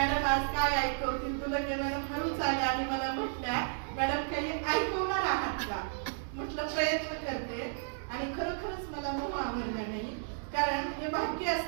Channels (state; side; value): silent; left; digital silence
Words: आज काय ऐकवतील तुला. त्या मॅडम हळूच आल्या आणि मला म्हटल्या मॅडम काही ऐकवणार आहात का. म्हटलं प्रयत्न करते आणि खरोखरच मला मोह आवडला नाही. कारण हे भाग्य